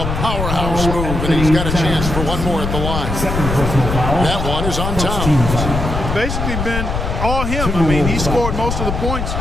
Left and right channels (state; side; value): noise; left; rumble, 3 dB below the sound